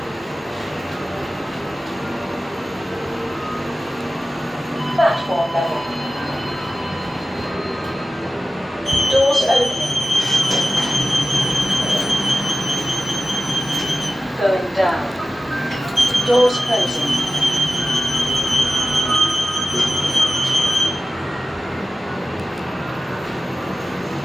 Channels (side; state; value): both; normal; correlation 0.94